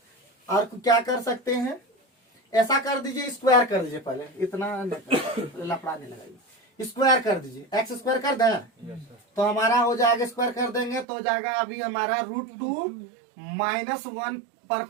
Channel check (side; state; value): left; drops out; at 11.1 s